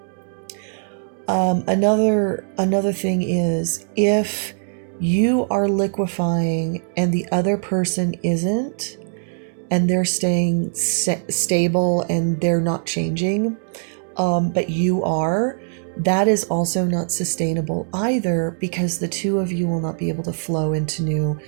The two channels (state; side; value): silent; left; digital silence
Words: Another thing is, if you are liquefying and the other person isn't, and they're staying stable and they're not changing, but you are, that is also not sustainable either, because the two of you will not be able to flow into new